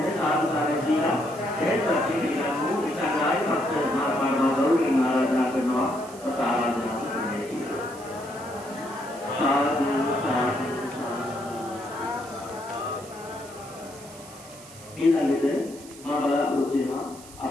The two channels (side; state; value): right; noise; hiss, 19 dB below the sound